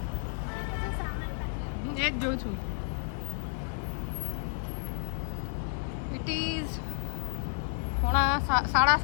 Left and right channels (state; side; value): silent; right; 57 dB below the other